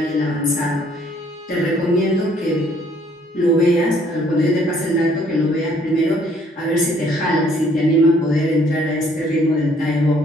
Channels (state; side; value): normal; both; correlation 0.63